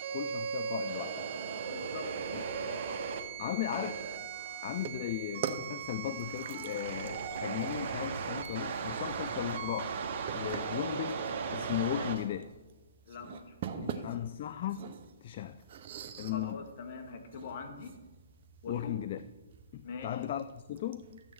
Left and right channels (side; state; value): both; inverted; correlation -0.42